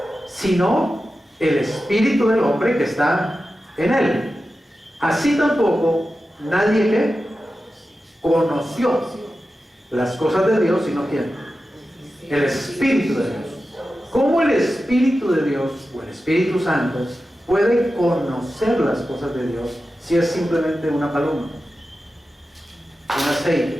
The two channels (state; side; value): normal; both; correlation 0.93